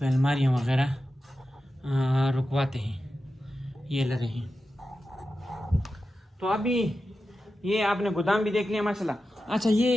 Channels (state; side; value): normal; both; correlation 0.91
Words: अलमारियाँ वगैरह रुकवाते हैं, ये लरे हैं। तो अभी ये आपने गोदाम भी देख लिया माशाल्लाह। अच्छा